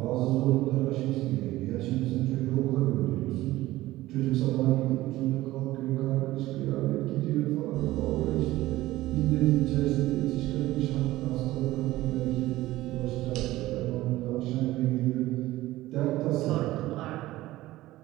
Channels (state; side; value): quieter; left; 16.9 dB